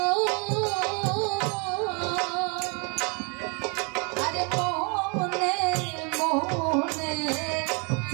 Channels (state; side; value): quieter; left; 33.9 dB